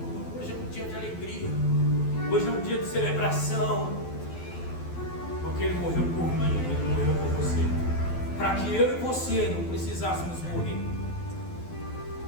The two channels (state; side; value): late; right; 12 ms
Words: hoje é um dia de alegria. Hoje é um dia de celebração. Porque Ele morreu por mim, Ele morreu por você, para que eu e você não precisássemos morrer.